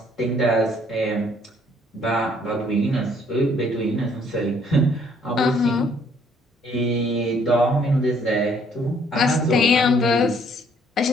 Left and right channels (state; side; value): normal; both; correlation 0.64